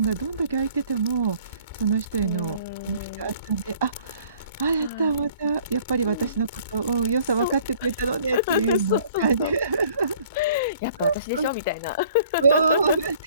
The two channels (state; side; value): inverted; both; correlation -0.55